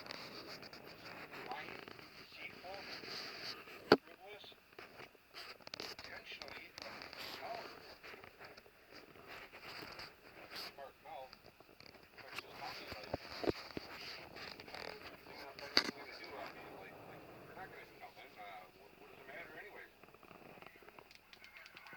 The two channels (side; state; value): both; identical; correlation 1.00